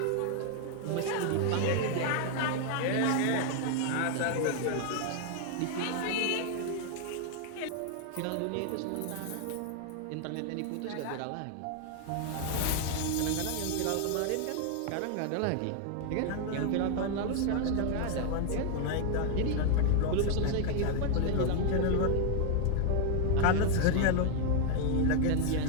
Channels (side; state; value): both; different; correlation 0.00